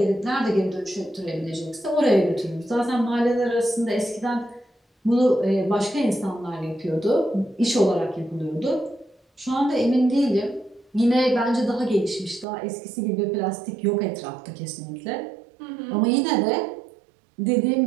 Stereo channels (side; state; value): left; drops out; at 12.5 s